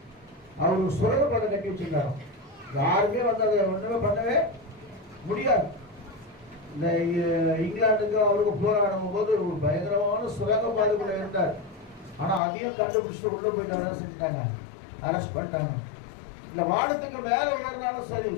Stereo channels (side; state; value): right; drops out; at 12.4 s